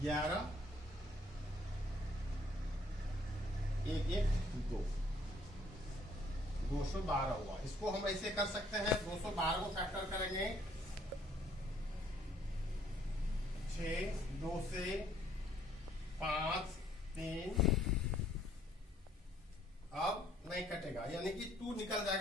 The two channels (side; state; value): both; normal; correlation 0.63